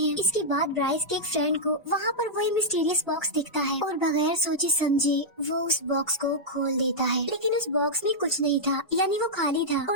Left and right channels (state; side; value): normal; both; correlation -0.08